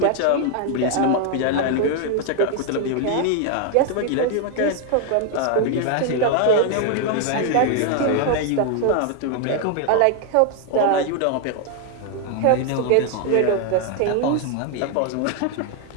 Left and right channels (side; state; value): both; different; correlation 0.00